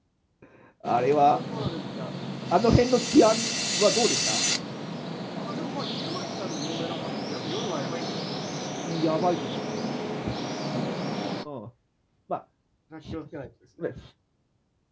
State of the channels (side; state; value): both; identical; correlation 1.00